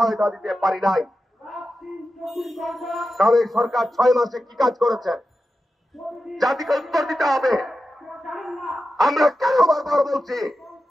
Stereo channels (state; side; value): normal; both; correlation 0.91